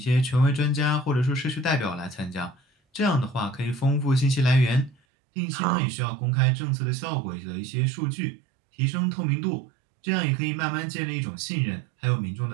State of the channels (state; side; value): drops out; left; at 5.0 s